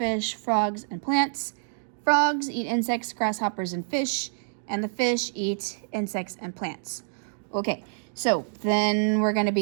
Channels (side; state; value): left; silent; digital silence